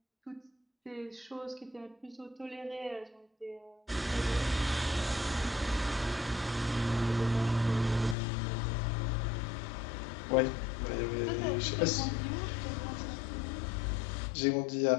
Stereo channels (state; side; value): drops out; right; at 8.2 s